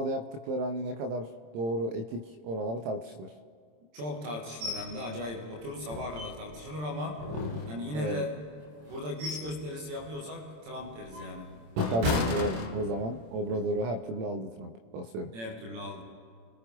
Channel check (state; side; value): late; left; 26 ms